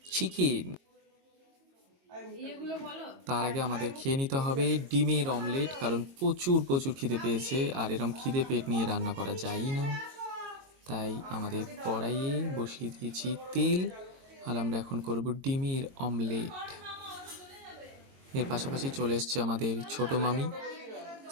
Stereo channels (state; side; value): late; left; 22 ms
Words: চিকেন। তার আগে আমাদের খেয়ে নিতে হবে ডিমের অমলেট, কারণ প্রচুর খিদে পেয়েছে, আর এরম খিদে পেট নিয়ে রান্না করা যায়ই না। তাই আমাদের কড়াইয়ে বসিয়ে দিয়েছি তেল, আর আমরা এখন করব ডিমের অমলেট। এর পাশাপাশি চলে এসছে আমাদের ছোট মামি,